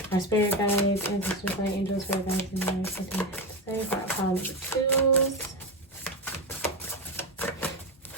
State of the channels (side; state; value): both; normal; correlation 0.14